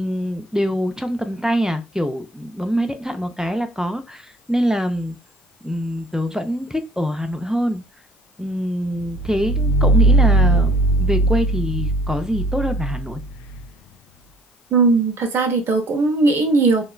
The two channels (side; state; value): both; normal; correlation 0.56